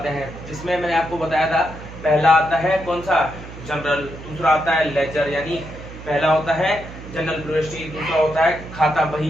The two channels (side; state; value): right; noise; hum, 14 dB below the sound